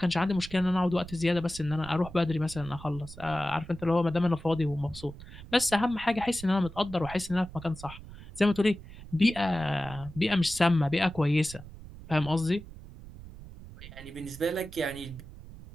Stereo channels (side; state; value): right; noise; rumble, 15 dB below the sound